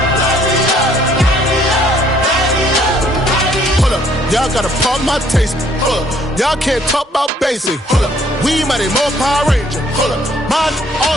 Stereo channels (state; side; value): normal; both; correlation 0.63